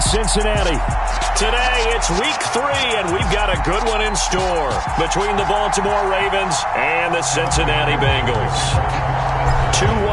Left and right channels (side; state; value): both; identical; correlation 1.00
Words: Cincinnati. Today, it's week 3, and we've got a good one in store between the Baltimore Ravens and the Cincinnati Bengals. 2